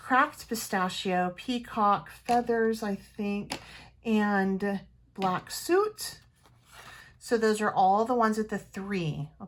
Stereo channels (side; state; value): both; identical; correlation 1.00